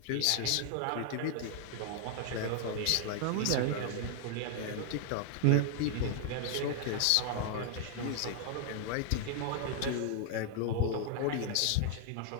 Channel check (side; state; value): both; different; correlation 0.00